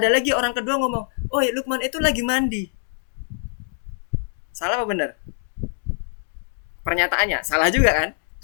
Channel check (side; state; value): right; silent; 59 dB below the other